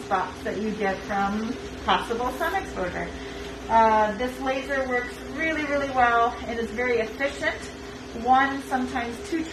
spots that you get from possible sun exposure. This laser works really, really well and is very efficient. One, sometimes two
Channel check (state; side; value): identical; both; correlation 1.00